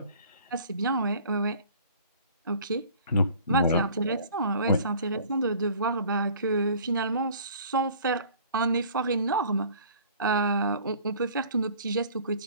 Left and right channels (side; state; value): both; inverted; correlation -0.50